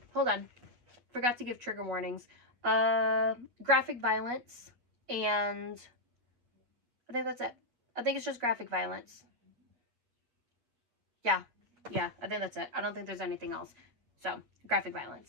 Hold on. Forgot to give trigger warnings. Graphic violence. And I think that's it. I think it's just graphic violence. Yeah, I think that's it. I don't think there's anything else. So, graphic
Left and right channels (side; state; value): left; late; 8.3 ms